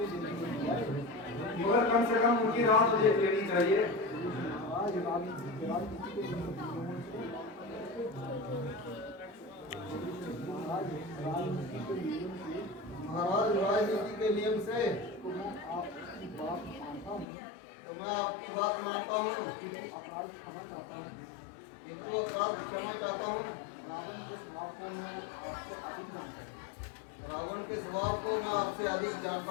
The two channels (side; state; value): right; drops out; at 17.2 s